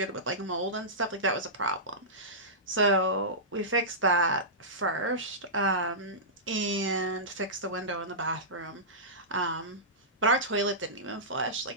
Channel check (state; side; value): normal; both; correlation -0.17